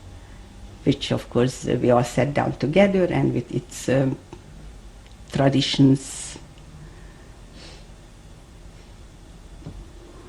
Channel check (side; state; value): both; identical; correlation 1.00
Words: which of course we all sat down together and with its traditions.